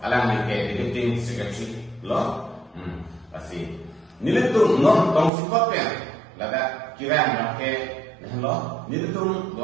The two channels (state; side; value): drops out; left; at 5.3 s